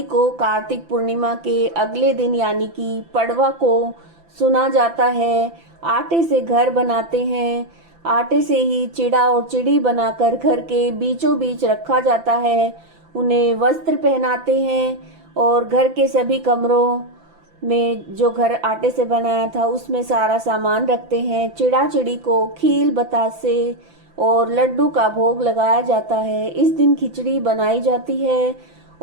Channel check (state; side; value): late; left; 5.9 ms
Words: को कार्तिक पूर्णिमा के अगले दिन यानी कि पड़वा को सुना जाता है। आटे से घर बनाते हैं। आटे से ही चिड़ा और चिड़ी बनाकर घर के बीचों बीच रखा जाता है। उन्हें वस्त्र पहनाते हैं और घर के सभी कमरों में जो घर आटे से बनाया था उसमें सारा सामान रखते हैं। चिड़ा चिड़ी को खील बतासे और लड्डू का भोग लगाया जाता है। इस दिन खिचड़ी बनाई जाती है